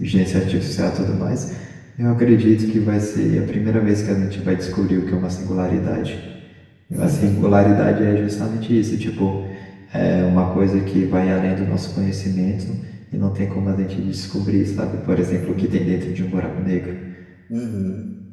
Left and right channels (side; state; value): both; identical; correlation 1.00